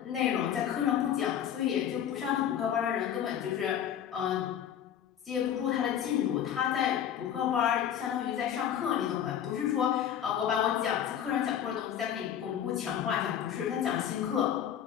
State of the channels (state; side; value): quieter; right; 9.7 dB